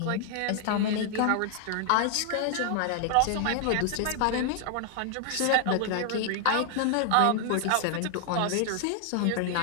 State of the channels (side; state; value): both; different; correlation 0.00